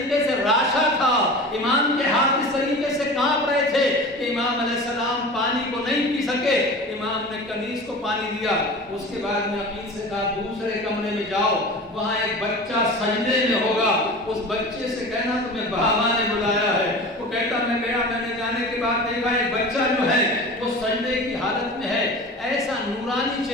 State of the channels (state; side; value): normal; both; correlation 0.35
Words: سے راشا تھا، امام کے ہاتھ اس طریقے سے کانپ رہے تھے کہ امام علیہ السلام پانی کو نہیں پی سکے۔ امام نے کنیز کو پانی دیا. اس کے بعد میں عقیل سے کہا دوسرے کمرے میں جاؤ, وہاں ایک بچہ سجدے میں ہوگا, اس بچے سے کہنا تمہیں بابا نے بلایا ہے. وہ کہتا میں گیا, میں نے جانے کے بعد دیکھا ایک بچہ جو ہے وہ سجدے کی حالت میں ہے, ایسا نورانی